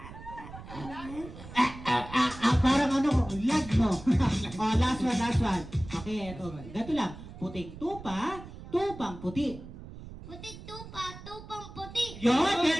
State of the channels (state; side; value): noise; right; rumble, 14 dB below the sound